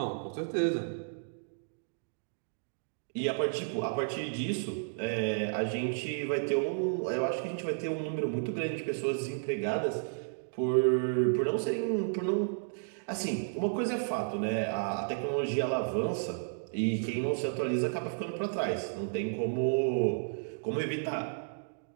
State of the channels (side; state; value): left; silent; digital silence